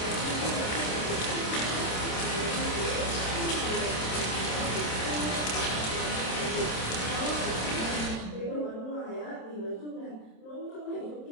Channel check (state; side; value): late; right; 27 ms